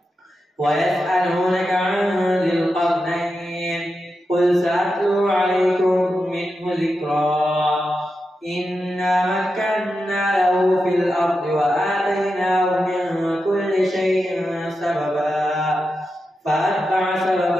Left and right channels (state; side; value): normal; both; correlation 0.89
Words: ويسألونك عن ذي القرنين قل سأتلو عليكم منه ذكرا. إنا مكنا له في الأرض وآتيناه من كل شيء سببا فأتبع